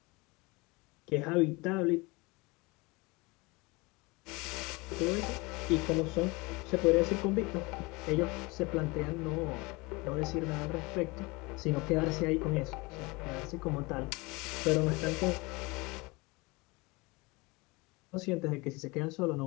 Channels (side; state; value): right; quieter; 25.1 dB